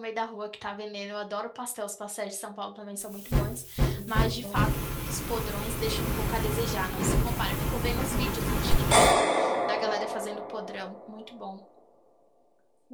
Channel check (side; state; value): both; identical; correlation 1.00